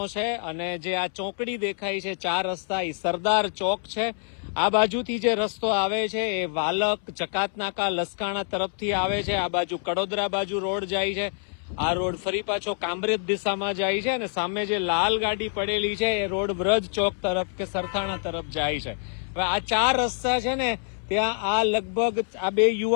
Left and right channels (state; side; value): silent; right; 61 dB below the other